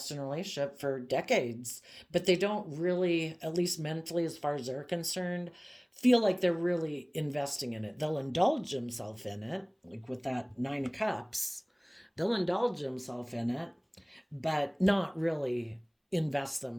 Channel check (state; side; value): identical; both; correlation 1.00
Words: in a relationship for decades, but they don't really, at least mentally as far as they're concerned, feel like they're really investing in it. They'll indulge themselves in it, like with that Nine of Cups. They'll indulge themselves in it, but not really invest